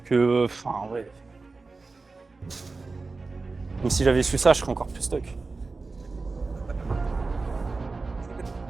enfin, en vrai. Même si j'avais su ça, je serais encore plus stock.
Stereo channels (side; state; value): left; quieter; 3.9 dB